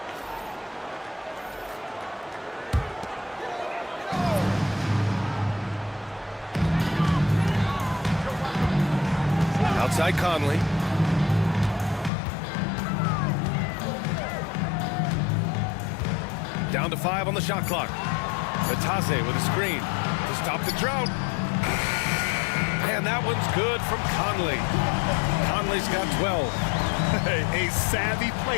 Outside Conley. Down to 5 on the shot clock. Batase with a screen to stop the drought. And that one's good from Conley. Conley's got 12. A savvy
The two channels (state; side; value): drops out; right; at 12.1 s